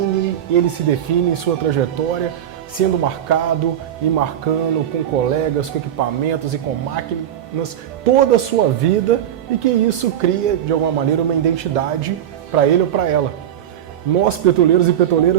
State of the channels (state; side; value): quieter; left; 10.5 dB